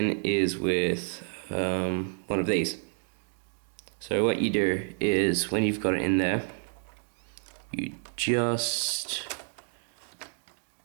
is with one of these. So what you do is when you've got it in there, you just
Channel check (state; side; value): silent; left; 57 dB below the other